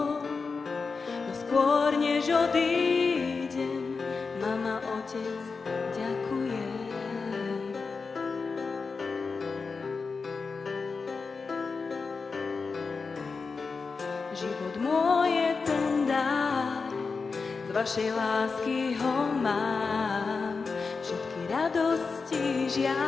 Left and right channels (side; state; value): right; quieter; 4.7 dB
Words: no skôr než odídem, mama, otec, ďakujem. Život môj je ten dar, z vašej lásky ho mám, všetky radosti,